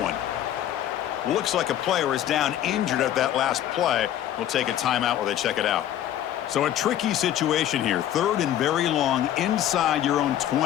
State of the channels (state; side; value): quieter; right; 11.5 dB